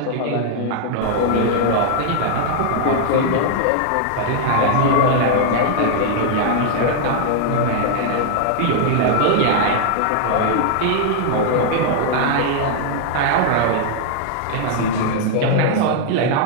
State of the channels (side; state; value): both; different; correlation -0.01